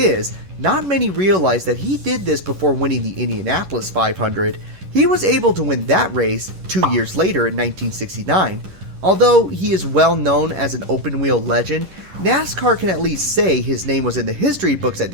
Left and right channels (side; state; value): left; late; 11 ms